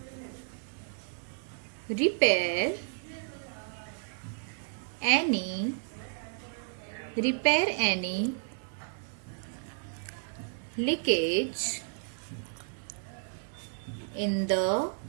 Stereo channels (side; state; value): left; silent; 56 dB below the other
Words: repair any leakage in the